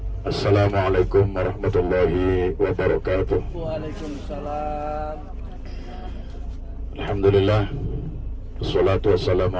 Assalamualaikum warahmatullahi wabarakatuh. Waalaikumsalam. Alhamdulillah. Wassalatu wassalamu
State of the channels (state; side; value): identical; both; correlation 1.00